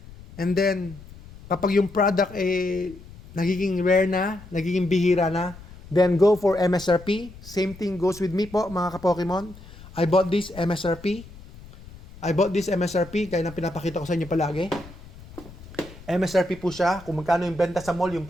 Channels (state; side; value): noise; left; rumble, 18 dB below the sound